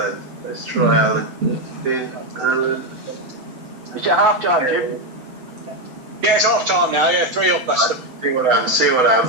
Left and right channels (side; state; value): left; late; 7.9 ms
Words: Let's try Alan. Alan. Is it half time, Jim? Yeah, it's half time now. Yeah, 3-up, Leicester. See what